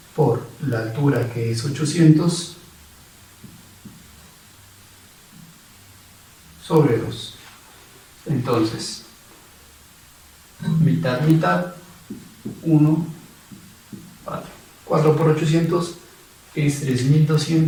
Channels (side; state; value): both; identical; correlation 1.00